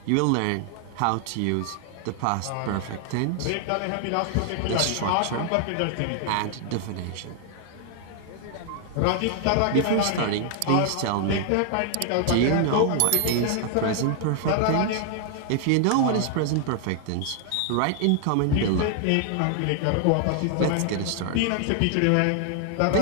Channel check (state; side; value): different; both; correlation 0.00